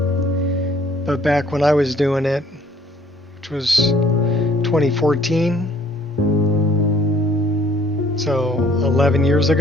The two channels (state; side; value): normal; both; correlation 0.59